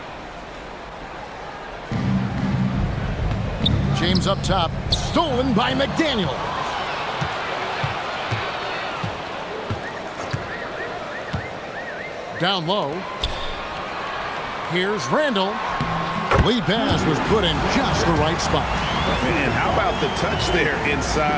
James up top, stolen by McDaniel. Down low. Here's Randall. Lead pass was put in just the right spot. And how about the touch there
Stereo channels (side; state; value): both; identical; correlation 1.00